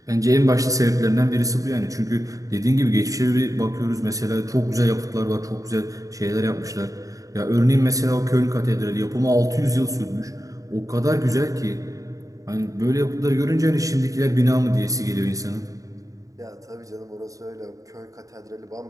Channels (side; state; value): left; late; 0.16 ms